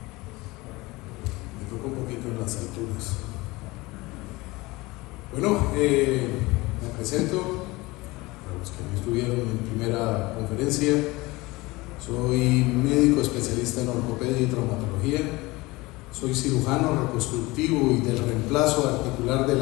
Me toca un poquito en las alturas. Bueno, me presento, para los que no estuvieron en mi primera conferencia. Soy médico especialista en ortopedia y traumatología. Soy cirujano reconstructivo y del reemplazo articular de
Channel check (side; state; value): right; quieter; 21.9 dB